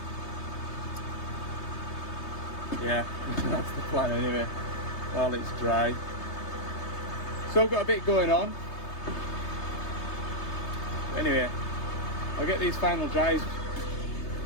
yeah, that's the plan anyway, while it's dry. So I've got a bit going on. Anyway, I'll get these final drives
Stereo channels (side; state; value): right; late; 3.3 ms